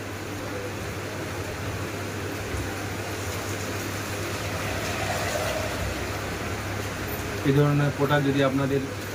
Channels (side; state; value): both; identical; correlation 1.00